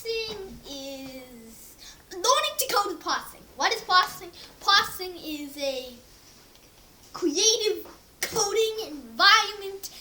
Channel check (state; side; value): identical; both; correlation 1.00